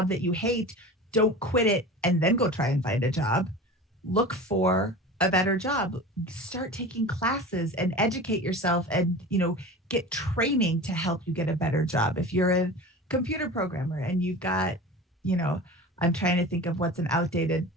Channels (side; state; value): both; normal; correlation 0.34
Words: that you hate, don't quit it and then go try and find a job. Look for a better job. Start taking classes and educate yourself, and, get training to help you get a better job. If you're a computer programmer and you've got, I'm trying to think of what's an outdated